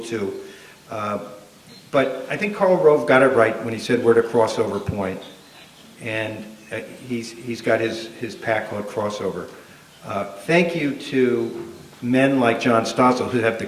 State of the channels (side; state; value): both; identical; correlation 1.00